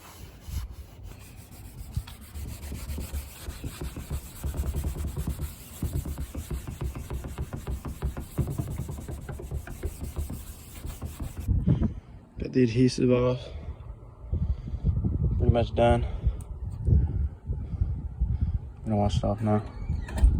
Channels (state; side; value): identical; both; correlation 1.00